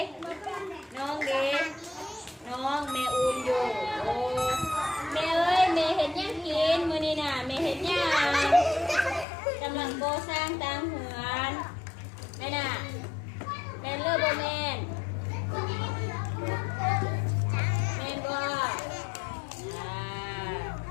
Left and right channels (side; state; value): right; drops out; at 9.2 s